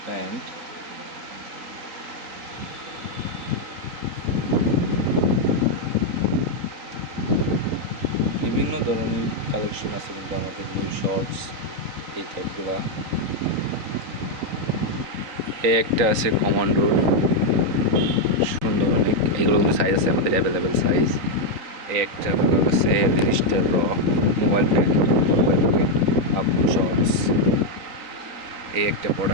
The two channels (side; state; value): left; late; 3.9 ms